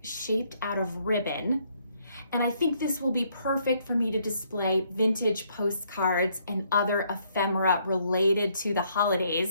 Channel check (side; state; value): both; inverted; correlation -0.70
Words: shaped out of ribbon. And I think this will be perfect for me to display vintage postcards and other ephemera related to the